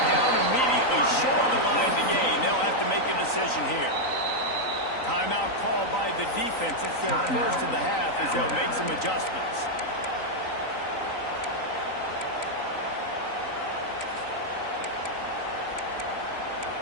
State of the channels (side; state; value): right; late; 3.9 ms